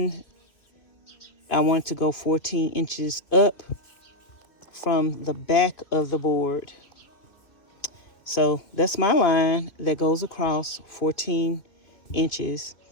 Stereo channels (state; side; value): late; right; 2.7 ms